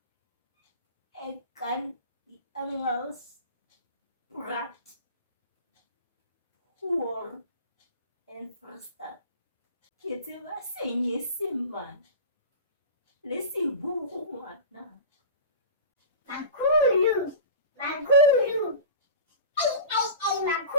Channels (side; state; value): both; inverted; correlation -0.32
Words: E kan die Engels praat hoor en verstaan. Ke tseba Senyesemane le Seburu ngwana. Makhulu. Makhulu